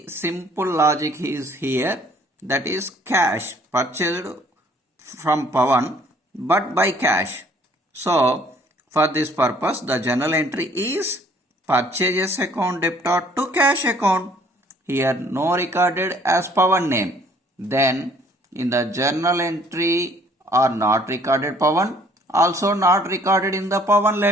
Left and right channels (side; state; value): both; normal; correlation 0.59